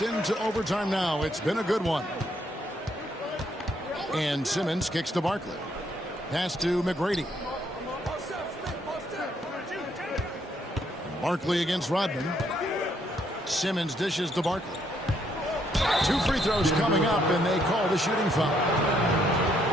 into overtime now. It's been a good one. And Simmons kicks to Barkley. Pass to McGrady. Barkley against Rodman. Simmons dishes to Barkley. 2 free throws coming up, and they call the shooting foul.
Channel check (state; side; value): normal; both; correlation 0.71